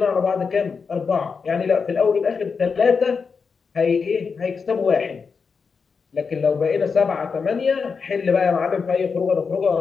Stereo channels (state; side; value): quieter; right; 5.4 dB